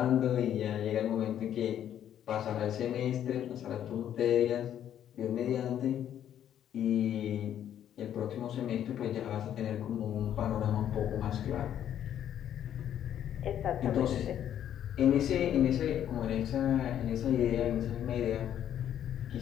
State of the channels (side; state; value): right; quieter; 10.3 dB